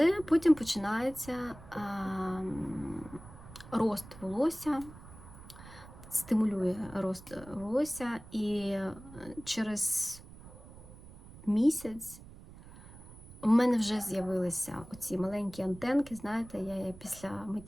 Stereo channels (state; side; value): noise; right; rumble, 18 dB below the sound